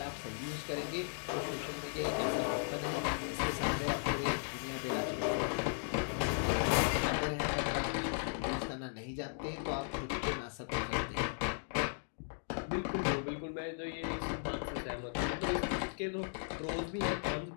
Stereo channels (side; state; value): right; silent; digital silence